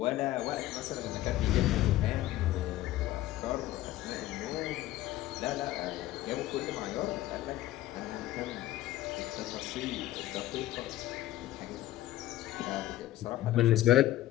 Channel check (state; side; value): quieter; right; 14.8 dB